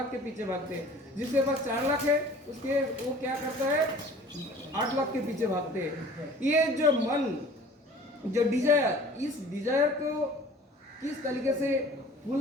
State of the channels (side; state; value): both; normal; correlation 0.47